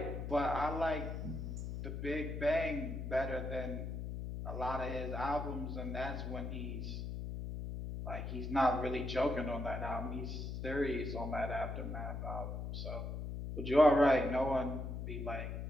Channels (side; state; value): left; noise; hum, 5 dB below the sound